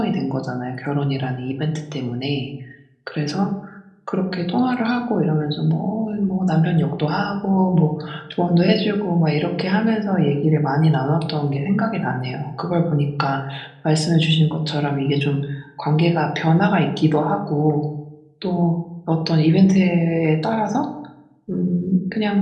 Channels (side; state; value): both; identical; correlation 1.00